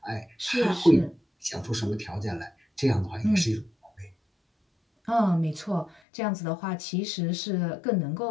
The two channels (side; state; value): right; drops out; at 6.0 s